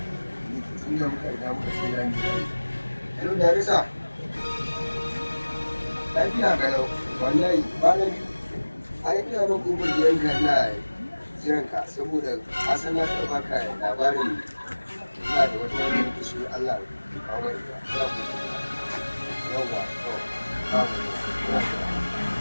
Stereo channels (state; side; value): inverted; both; correlation -1.00